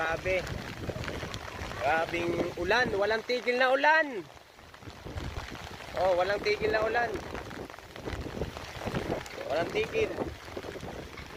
Grabing ulan, walang tigil na ulan. Oh, walang tigil na ulan. Walang tigil.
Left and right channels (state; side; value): identical; both; correlation 1.00